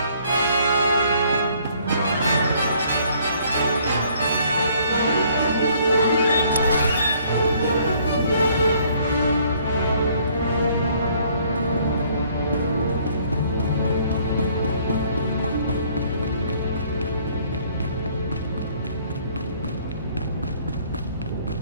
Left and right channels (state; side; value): inverted; both; correlation -0.62